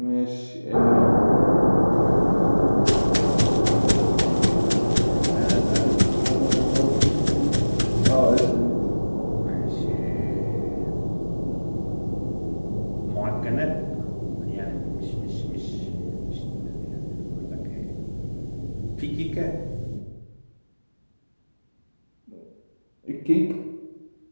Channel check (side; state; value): both; inverted; correlation -1.00